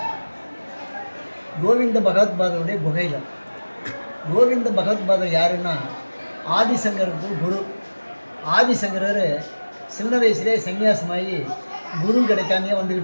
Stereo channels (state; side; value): inverted; both; correlation -1.00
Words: கோவிந்த பகவத்பாதருடைய குகையில். கோவிந்த பகவத்பாதர் யாருன்னா ஆதிசங்கருக்கு குரு. ஆதிசங்கரர் சின்ன வயசுலேயே சன்னியாசமாகி குரு கிடைக்காமையே